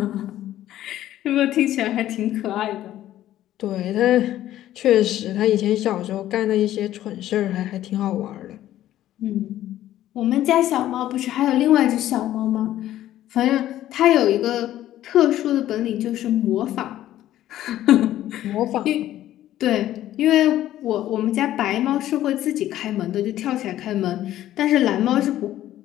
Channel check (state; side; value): quieter; right; 13.2 dB